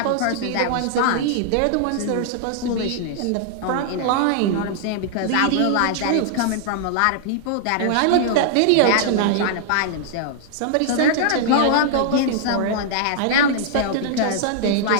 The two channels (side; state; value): both; different; correlation -0.01